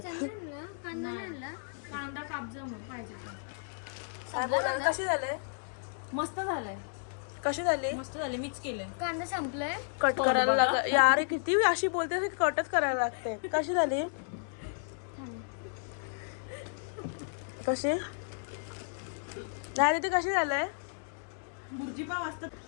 कांदा कापजा मग पाहिजे काय बोलायला? कशी झाले? मस्त झालंय. कशी झाली? मस्त झाले. मिक्स केलंय. कांदा संपलाय. कट करायला लाग यार. किती अशी बोलते कटच करायला लागते. कशी झाली? कशी नाही ती कशी झालंय?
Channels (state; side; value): silent; right; digital silence